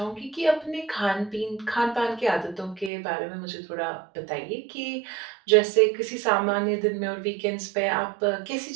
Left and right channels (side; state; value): left; drops out; at 2.9 s